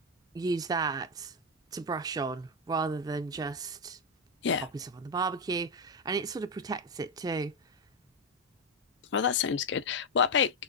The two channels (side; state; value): both; normal; correlation 0.06